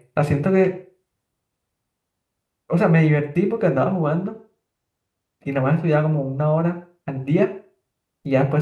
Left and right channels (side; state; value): both; identical; correlation 1.00